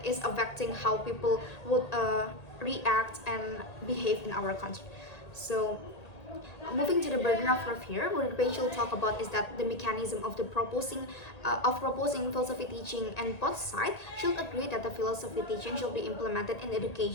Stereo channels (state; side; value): late; right; 1.8 ms